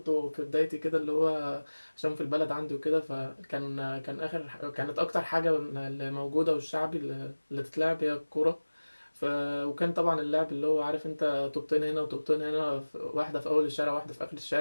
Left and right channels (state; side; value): inverted; both; correlation -1.00